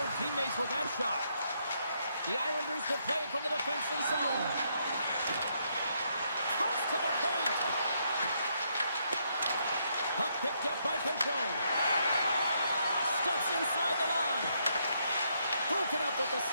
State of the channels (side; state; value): both; inverted; correlation -0.75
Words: teammates with that shot. The Islanders will play from the defensive zone. Cuts to the paint. Puck picked up by Peugeot. Steps inside the line. Broken up with the